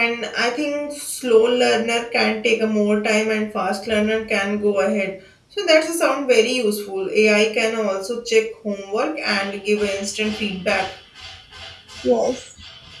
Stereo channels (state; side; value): identical; both; correlation 1.00